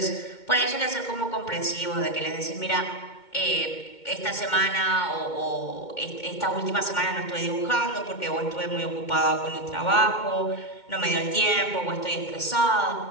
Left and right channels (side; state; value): right; late; 2.2 ms